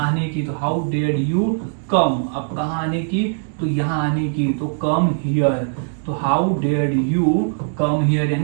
की, तो हाउ डेयर्ड यू कम। अब कहाँ आने की, तो यहाँ आने की, तो कम हियर। तो how dared you come here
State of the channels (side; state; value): left; silent; digital silence